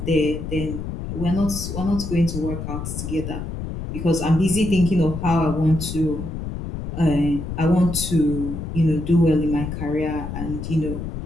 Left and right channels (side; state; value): left; noise; rumble, 6 dB below the sound